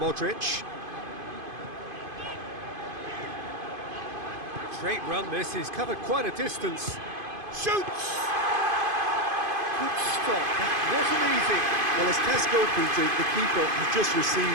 Great run this, he's covered quite a distance. Shoots! Good stop, that wasn't easy. Well, as Tesco printed, the keeper has just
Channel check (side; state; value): left; late; 2.5 ms